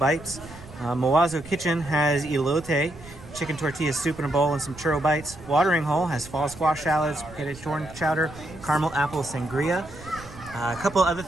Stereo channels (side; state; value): right; noise; rumble, 17 dB below the sound